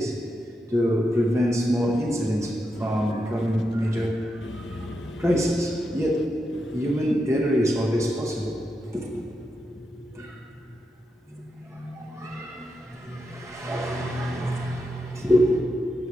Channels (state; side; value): normal; both; correlation 0.85